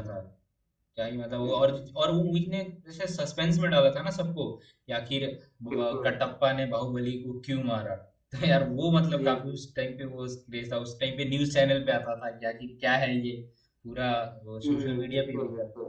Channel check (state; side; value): identical; both; correlation 1.00